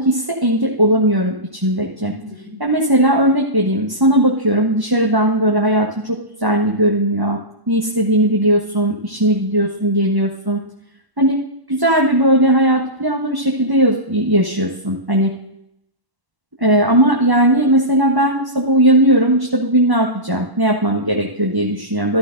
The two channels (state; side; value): late; left; 1.0 ms